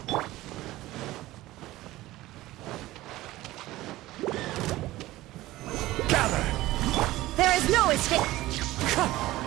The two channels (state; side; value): quieter; left; 17.1 dB